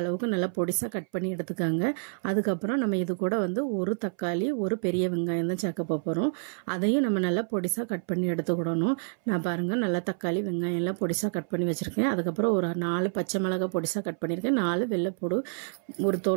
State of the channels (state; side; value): silent; left; 59 dB below the other